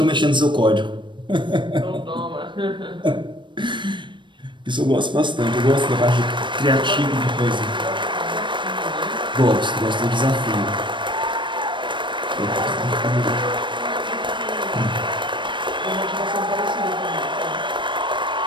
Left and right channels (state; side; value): late; left; 0.23 ms